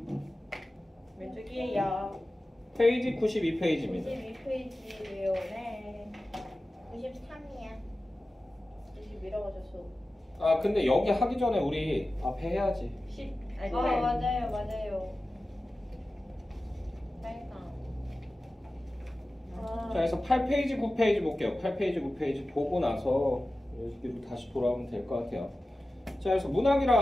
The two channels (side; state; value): both; normal; correlation 0.95